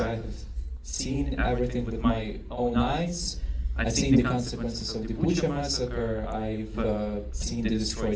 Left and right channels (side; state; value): both; identical; correlation 1.00